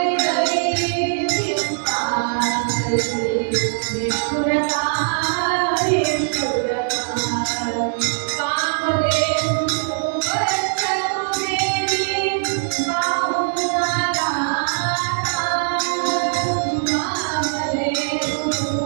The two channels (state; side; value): silent; left; 65 dB below the other